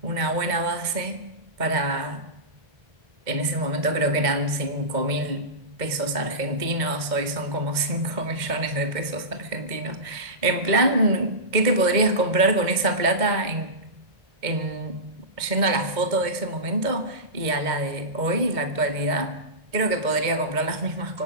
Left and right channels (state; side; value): late; left; 2.1 ms